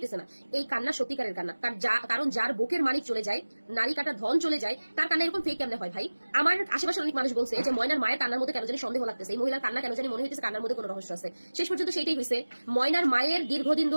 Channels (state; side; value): inverted; both; correlation -1.00